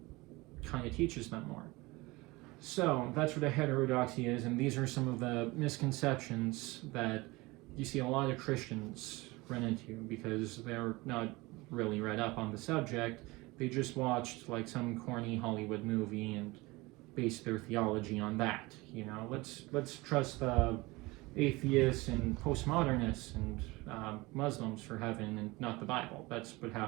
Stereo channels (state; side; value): quieter; left; 22.5 dB